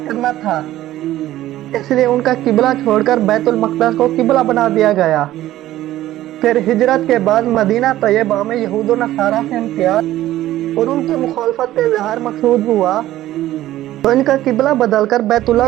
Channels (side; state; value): left; quieter; 14.4 dB